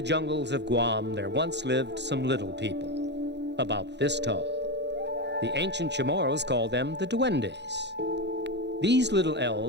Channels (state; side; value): late; left; 0.50 ms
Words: jungles of Guam there once lived some little people, about this tall. The ancient Chamoros called them the Duendes. These little